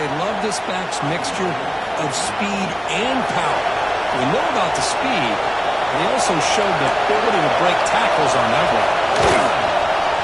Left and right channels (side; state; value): both; identical; correlation 1.00